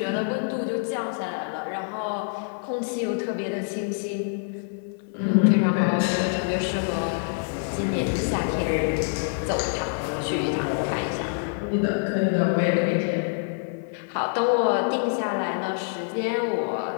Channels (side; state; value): right; silent; 58 dB below the other